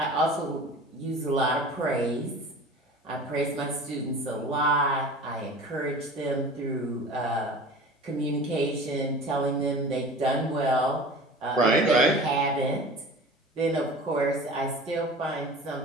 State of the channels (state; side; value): normal; both; correlation 0.39